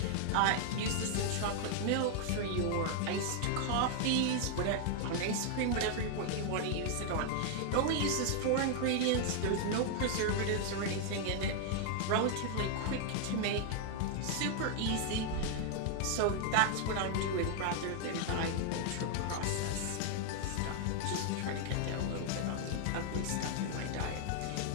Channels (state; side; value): different; both; correlation 0.00